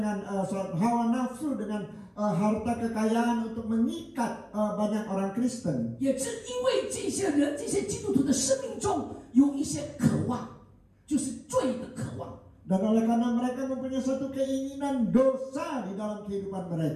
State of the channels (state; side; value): identical; both; correlation 1.00